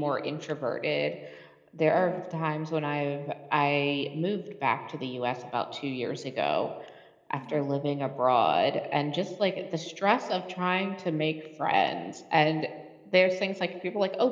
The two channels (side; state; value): both; identical; correlation 1.00